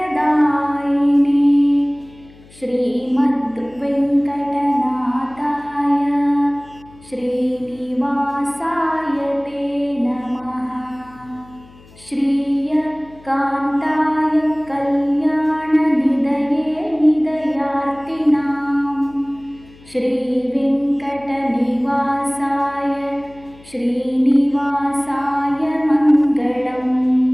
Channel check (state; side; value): noise; left; hum, 24 dB below the sound